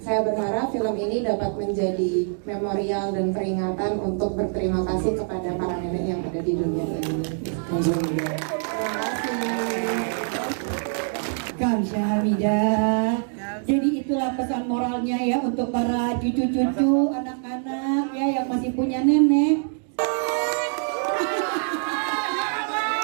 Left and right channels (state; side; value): silent; left; 62 dB below the other